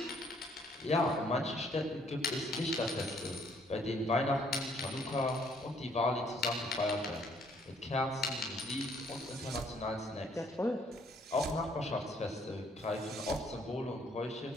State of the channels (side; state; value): both; normal; correlation 0.65